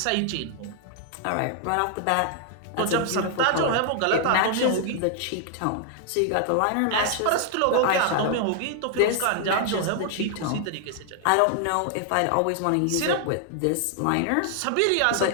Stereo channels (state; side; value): different; both; correlation 0.00